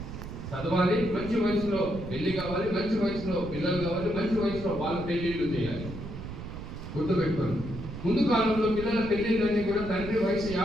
చదవాలి, మంచి వయసులో పెళ్లి కావాలి, మంచి వయసులో పిల్లలు కావాలి, మంచి వయసులో వాళ్ళ పెళ్లిళ్ళు చేయాలి. గుర్తుపెట్టుకోండి. ముందు కాలంలో పిల్లల పెళ్లిళ్ళన్నీ కూడా తండ్రి వయసు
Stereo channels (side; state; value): right; noise; rumble, 9 dB below the sound